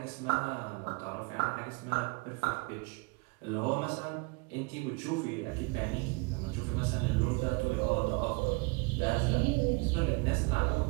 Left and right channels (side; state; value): left; quieter; 28.8 dB